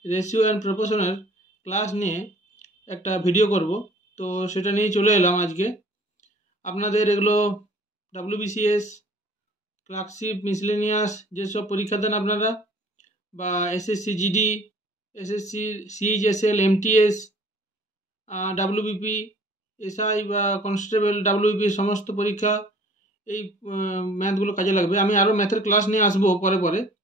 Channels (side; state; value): both; normal; correlation 0.52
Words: রেশিও অ্যান্ড প্রপোর্শনের ক্লাস নিয়ে একটা ভিডিও করব, তো সেটা নিয়েই চলে এলাম আজকে। আপনাদের এগুলো WBCS, ক্লার্কশিপ, মিসলেনিয়াস যেসব পরীক্ষা দেন আপনারা, বা SSC GD, SSC CHSL, MTS, WBP, SI বা কনস্টেবল, WBP সমস্ত পরীক্ষা এই ম্যাথগুলো কাজে লাগবে। আমি আরও ম্যাথের ক্লাস নিয়ে আসবো পরে পরে,